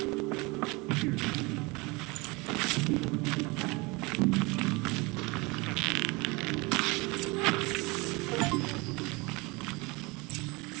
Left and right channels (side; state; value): left; quieter; 25.9 dB